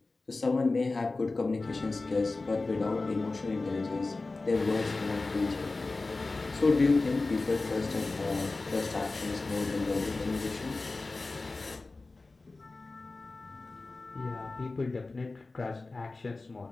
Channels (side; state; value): right; quieter; 3.5 dB